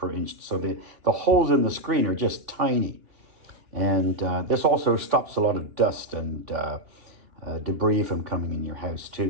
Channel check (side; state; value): left; late; 2.9 ms